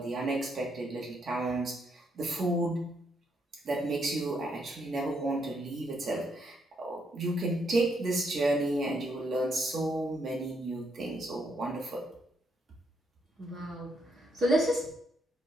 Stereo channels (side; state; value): both; normal; correlation 0.76